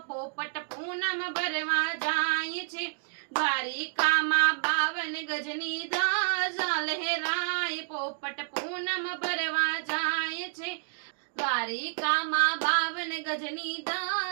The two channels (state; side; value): silent; left; digital silence